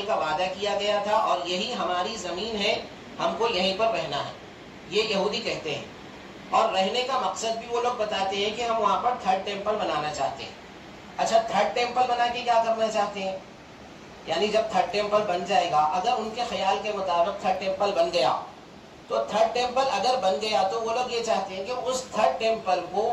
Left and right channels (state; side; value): identical; both; correlation 1.00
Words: کا وعدہ کیا گیا تھا اور یہی ہماری زمین ہے، ہم کو یہیں پر رہنا ہے. یہ یہودی کہتے ہیں. اور رہنے کا مقصد بھی وہ لوگ بتاتے ہیں کہ ہم وہاں پر 3rd ٹیمپل بنانا چاہتے ہیں. اچھا 3rd ٹیمپل بنا کے کیا کرنا چاہتے ہیں؟ یعنی جب 3rd ٹیمپل بن جائے گا، اگر ان کے خیال کے مطابق 3rd ٹیمپل بن گیا، تو 3rd ٹیمپل اگر بن گیا تو وہ لوگ یہ چاہتے ہیں کہ اس 3rd ٹیمپل